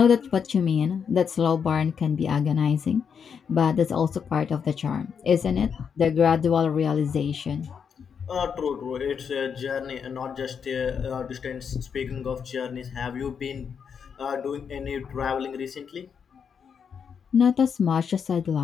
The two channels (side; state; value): right; quieter; 6.9 dB